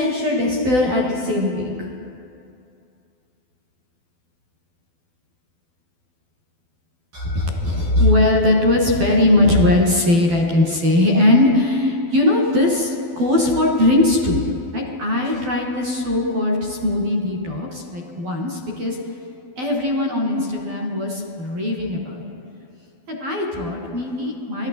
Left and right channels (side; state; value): left; late; 12 ms